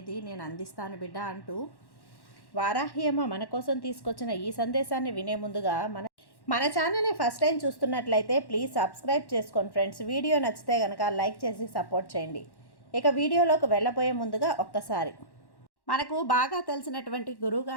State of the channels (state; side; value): late; right; 1.1 ms